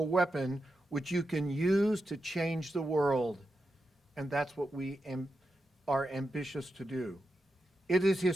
weapon which you can use to change the world. And that's what we are ambitious to do. It is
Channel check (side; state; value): both; normal; correlation 0.88